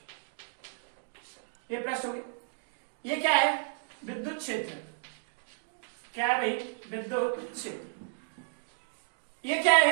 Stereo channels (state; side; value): silent; left; digital silence